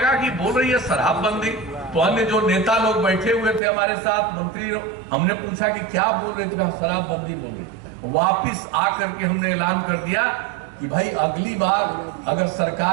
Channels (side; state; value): left; drops out; at 3.6 s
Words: कि बोल रही है शराबबंदी, तो अन्य जो नेता लोग बैठे हुए थे हमारे साथ, मंत्री, हमने पूछा कि क्या बोल रहे थे, शराबबंदी बोल रही। वापिस आकर के हमने ऐलान कर दिया कि भाई अगली बार अगर